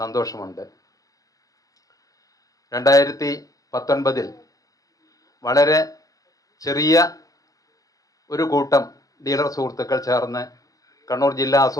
2019 വളരെ ചെറിയ ഒരു കൂട്ടം ഡീലർ സുഹൃത്തുക്കൾ ചേർന്ന് കണ്ണൂർ ജില്ലാ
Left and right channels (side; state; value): right; late; 0.17 ms